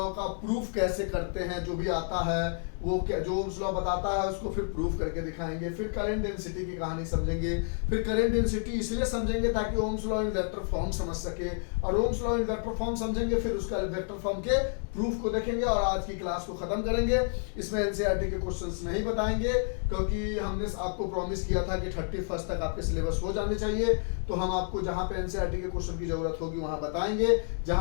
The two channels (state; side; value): silent; right; 58 dB below the other